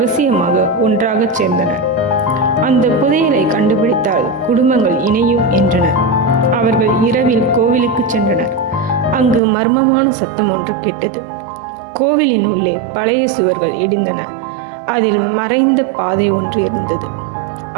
ஒன்றாக சேர்ந்தனர். அந்த புதையலை கண்டுபிடித்தால் குடும்பங்கள் இணையும் என்றனர். அவர்கள் இரவில் கோவிலுக்கு சென்றனர். அங்கு மர்மமான சத்தம் ஒன்று கேட்டது. கோவிலின் உள்ளே பழைய சுவர்கள் இடிந்தன. அதில் மறைந்த பாதை ஒன்று இருந்தது.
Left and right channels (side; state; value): left; drops out; at 9.4 s